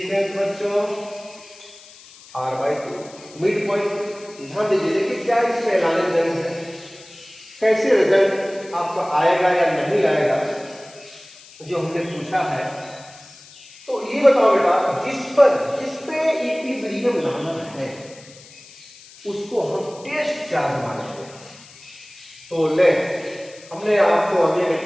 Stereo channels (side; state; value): left; noise; hiss, 21 dB below the sound